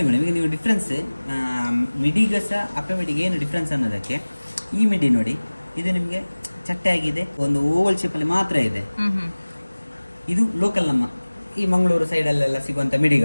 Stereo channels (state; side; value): inverted; both; correlation -1.00